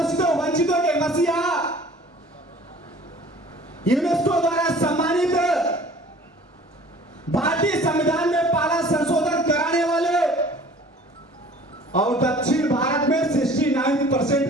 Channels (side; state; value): both; normal; correlation 0.48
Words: वंचितों के मसीहा, यूनेस्को द्वारा सम्मानित, भारतीय संविधान में पहला संशोधन कराने वाले और दक्षिण भारत में 69%